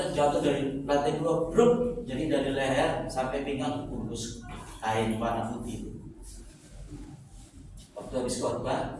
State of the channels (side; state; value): both; identical; correlation 1.00